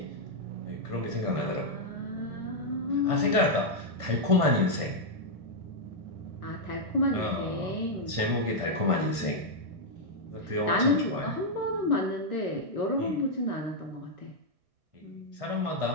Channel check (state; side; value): late; left; 1.6 ms